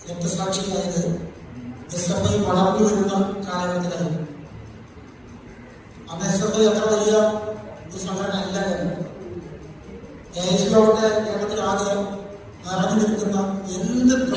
രക്തസാക്ഷിയായത് SFI വളർന്നു വരുന്ന കാലഘട്ടത്തിലായിരുന്നു. അന്ന് SFI അത്ര വലിയ ഒരു സംഘടന അല്ല. AICയോടെ കേരളത്തിലാകെ നിറഞ്ഞു നിൽക്കുന്ന എന്ത്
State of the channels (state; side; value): identical; both; correlation 1.00